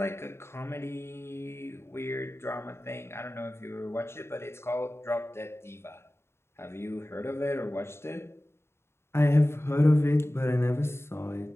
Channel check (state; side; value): late; right; 0.12 ms